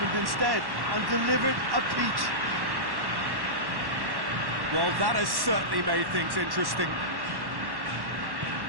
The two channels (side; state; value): left; late; 1.1 ms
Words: instead and delivered a peach. Well, that has certainly made things interesting.